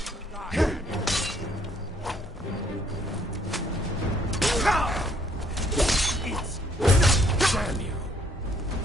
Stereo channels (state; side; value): normal; both; correlation 0.65